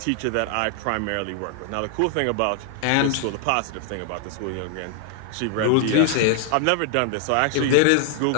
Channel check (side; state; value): both; different; correlation 0.00